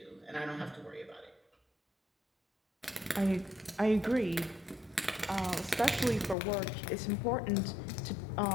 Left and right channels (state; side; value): drops out; right; at 6.4 s